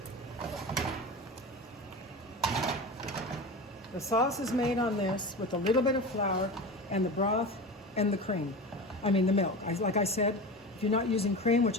The sauce is made on this with a little bit of flour and the broth and the cream. I mean the milk. Like I said, if you're not using cream, which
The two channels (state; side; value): normal; both; correlation 0.28